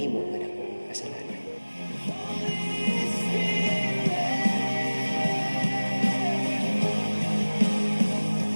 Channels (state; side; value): inverted; both; correlation -1.00